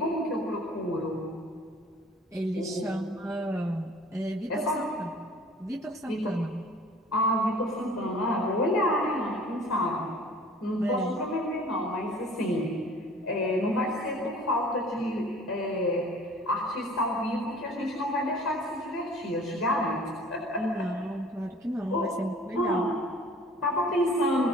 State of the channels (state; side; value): normal; both; correlation 0.48